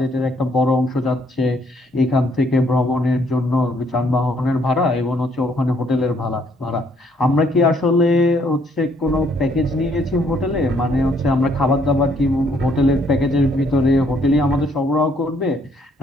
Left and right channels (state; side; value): normal; both; correlation 0.67